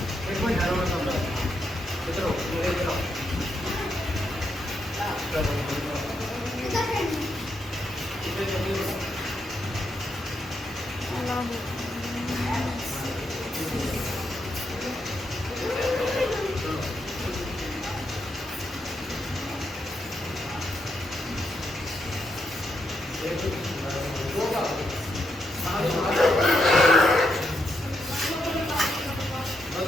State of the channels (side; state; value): both; normal; correlation 0.81